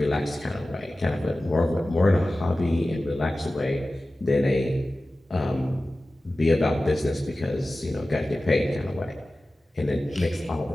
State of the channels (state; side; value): normal; both; correlation 0.96